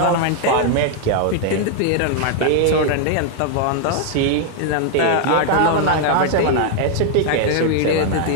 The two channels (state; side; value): different; both; correlation 0.00